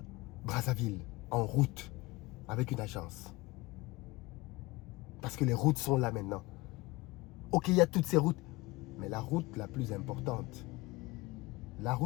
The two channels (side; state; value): right; quieter; 21.8 dB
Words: Brazzaville en route. avec une agence. Parce que les routes sont là maintenant. Ok, il y a toutes ces routes. Mais la route la plus importante, la